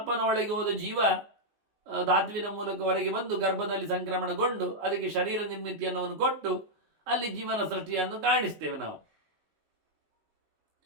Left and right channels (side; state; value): left; late; 19 ms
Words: ಒಳಗೆ ಹೋದ ಜೀವ ಧಾತುವಿನ ಮೂಲಕ ಹೊರಗೆ ಬಂದು ಗರ್ಭದಲ್ಲಿ ಸಂಕ್ರಮಣಗೊಂಡು ಅದಕ್ಕೆ ಶರೀರ ನಿರ್ಮಿತಿಯನ್ನು ಕೊಟ್ಟು ಅಲ್ಲಿ ಜೀವನ ಸೃಷ್ಟಿಯನ್ನು ಕಾಣಿಸ್ತೇವೆ ನಾವು.